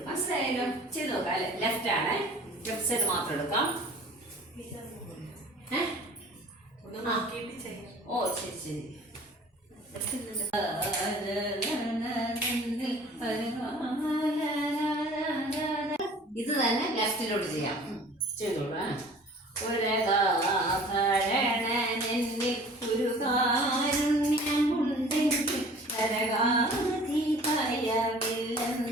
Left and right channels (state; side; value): normal; both; correlation 0.47